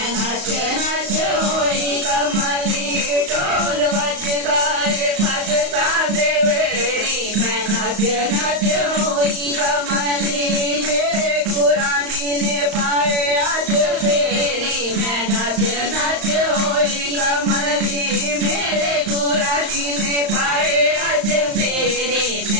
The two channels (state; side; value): late; left; 35 ms